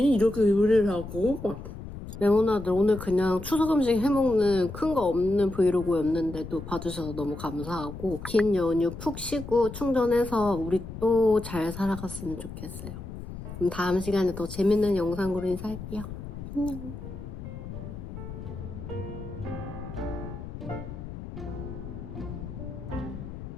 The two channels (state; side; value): noise; left; rumble, 10 dB below the sound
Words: 이렇게 요리를 하고 막. 레모나드 오늘 그냥 추석 음식 해먹는 큰 거 없는 브이로그였는데도 봐주셔서 너무 감사하고 긴 연휴 푹 쉬고 충전해서 우리 또 잘 살아갔으면 좋겠어요. 그럼 다음 시간에 더 재밌는 영상으로 인사할게요. 안녕.